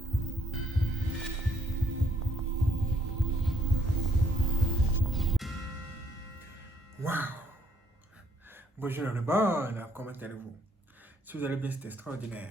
Waouh! Bonjour le bon, comment allez-vous? Si vous allez bien, c'est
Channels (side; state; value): both; normal; correlation 0.67